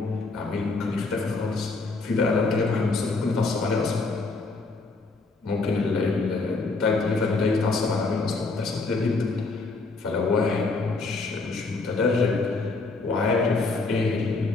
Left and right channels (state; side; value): quieter; right; 3.7 dB